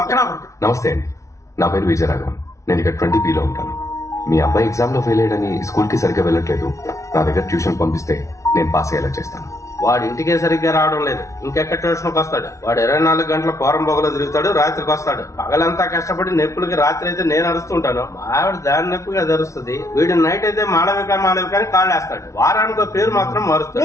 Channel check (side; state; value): right; late; 0.14 ms